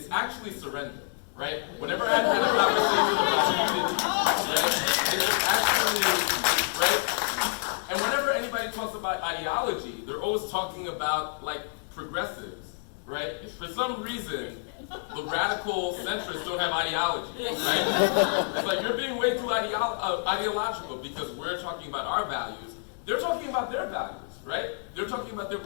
actually surrender, right? Whenever I've had a conversation about unity, right, it's actually, right? And whenever anybody talks about ideology, they're always talking about like progressives, right? For some reason, the radical centrists don't have ideology, right? It's like you're being way too ideological because we're talking about our values. They're talking about their values, right? They're talking about their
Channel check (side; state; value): right; silent; digital silence